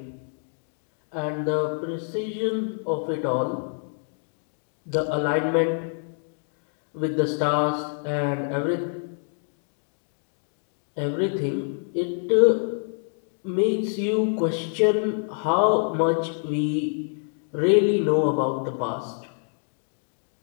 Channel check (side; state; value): right; silent; 61 dB below the other